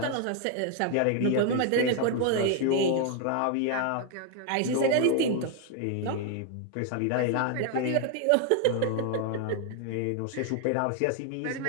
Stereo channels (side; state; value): both; different; correlation 0.00